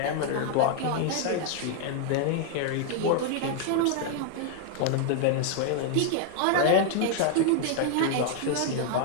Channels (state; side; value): different; both; correlation 0.00